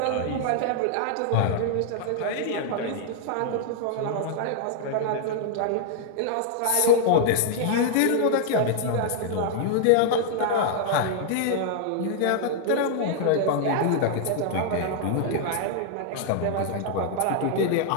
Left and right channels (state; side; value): different; both; correlation -0.01